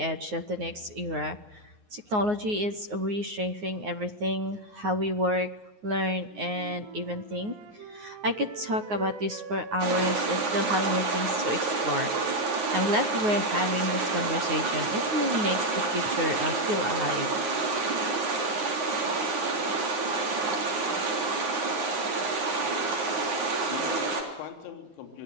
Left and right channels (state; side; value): late; left; 9.5 ms